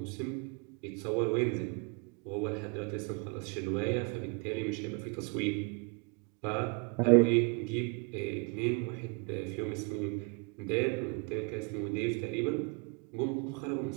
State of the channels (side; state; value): left; quieter; 34.8 dB